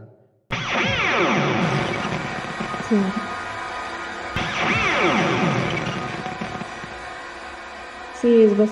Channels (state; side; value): identical; both; correlation 1.00